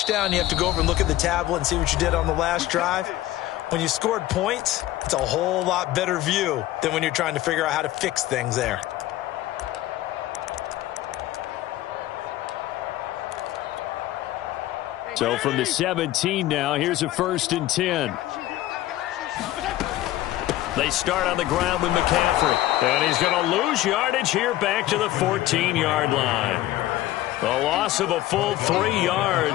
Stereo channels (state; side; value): quieter; right; 15.3 dB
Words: you have to go over and look at the tablet and see what you did on the last drive. When you scored points, it's a whole lot better view than when you're trying to figure out how to fix things there. So from the 17 now, here's a 1st and 10. They start on the ground with McCaffrey. And he's going to lose yardage here back to the 14-yard line. The loss of a full 3